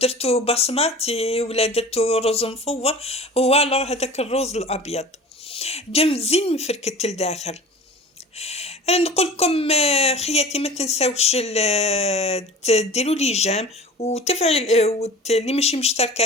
بصماتي ولا درتو رز مفور، هو الوغ هذاك الرز الابيض جا مزيان مفركت لداخل. نقول لكم خياتي ما تنساوش ديروا لي جيم وتفعل اللي ماشي مشتركه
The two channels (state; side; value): normal; both; correlation 0.39